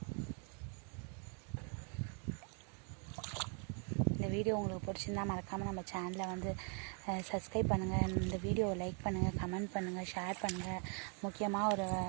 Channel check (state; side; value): quieter; left; 39.2 dB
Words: இந்த வீடியோ உங்களுக்கு பிடிச்சிருந்தா மறக்காமல் நம்ம சேனலை வந்து சப்ஸ்கிரைப் பண்ணுங்கள். இந்த வீடியோவை லைக் பண்ணுங்கள், கமெண்ட் பண்ணுங்கள், ஷேர் பண்ணுங்கள். முக்கியமாக ஒரு